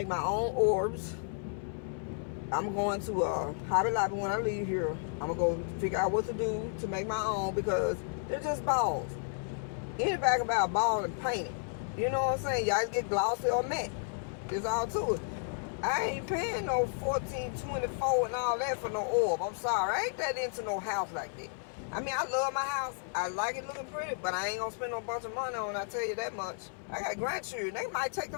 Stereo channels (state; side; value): silent; right; 56 dB below the other